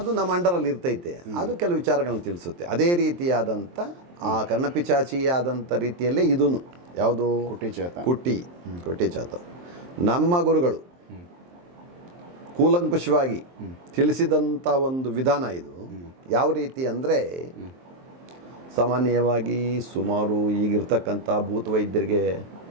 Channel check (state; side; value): late; left; 23 ms